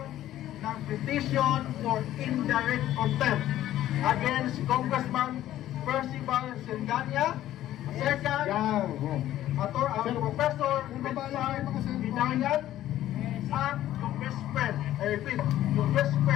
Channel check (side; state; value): right; quieter; 13.3 dB